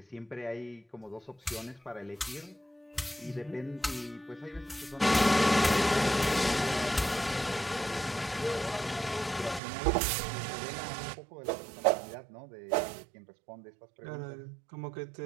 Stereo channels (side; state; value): left; drops out; at 9.6 s